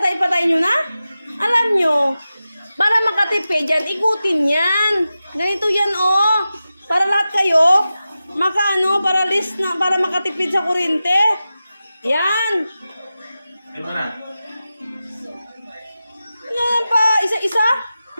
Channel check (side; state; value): both; inverted; correlation -0.93